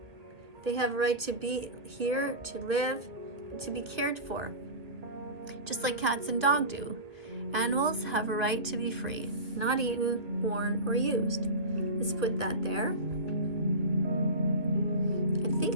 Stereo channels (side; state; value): left; late; 1.5 ms